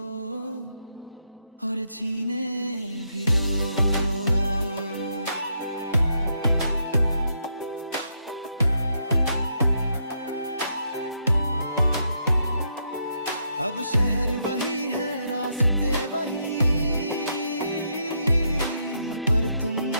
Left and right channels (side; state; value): both; inverted; correlation -0.77